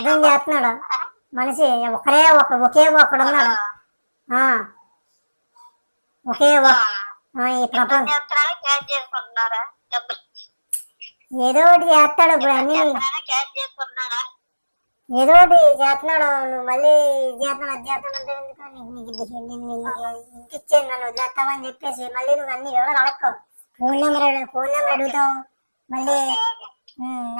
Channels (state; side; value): inverted; both; correlation -1.00